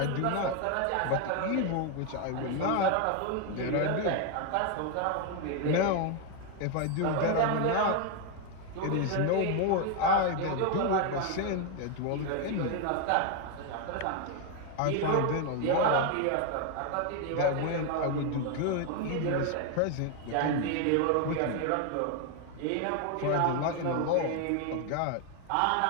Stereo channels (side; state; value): both; different; correlation 0.01